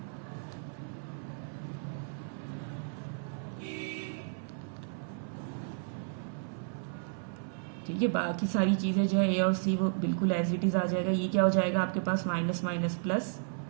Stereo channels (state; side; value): silent; left; 56 dB below the other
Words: ठीक है, बाकी सारी चीज़ें जो है ए और सी वो बिल्कुल एज इट इज़ आ जाएगा। ये क्या हो जाएगा आपके पास minus minus plus